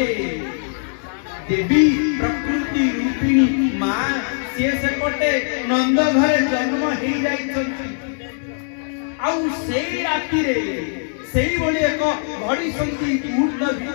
देवी प्रकृति रूपिणी मां से पटे नंद घरे जन्म हे जाइछंती आउ सेई राति रे सेई बोली एक घड़ी संति मुहूर्त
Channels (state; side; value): silent; right; digital silence